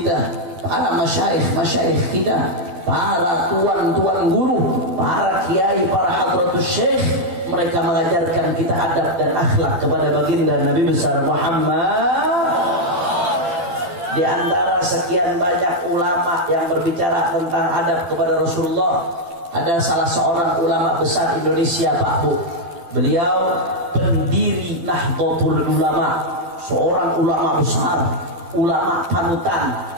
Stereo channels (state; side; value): late; left; 12 ms